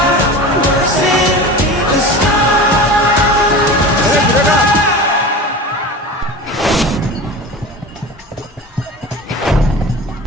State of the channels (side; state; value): both; normal; correlation 0.32